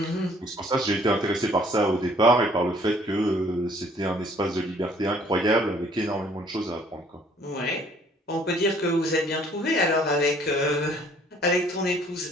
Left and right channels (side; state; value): both; normal; correlation 0.59